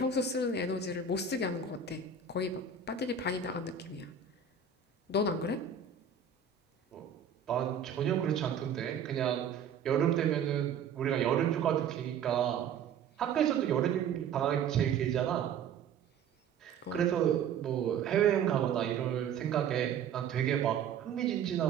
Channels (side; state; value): left; quieter; 6.7 dB